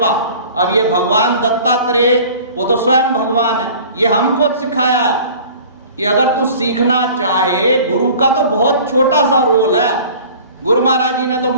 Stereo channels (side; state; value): both; inverted; correlation -0.45